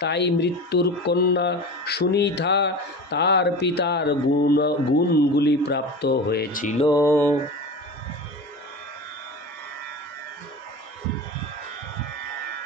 তাই মৃত্যুর কন্যা সুনীতা তার পিতার গুণগুলি প্রাপ্ত হয়েছিল।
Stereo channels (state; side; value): normal; both; correlation 0.31